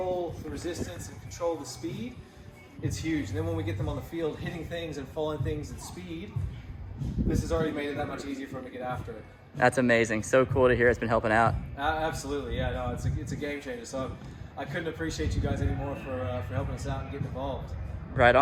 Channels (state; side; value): identical; both; correlation 1.00